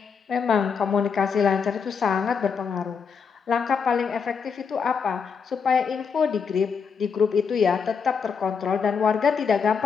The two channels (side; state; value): right; quieter; 6.0 dB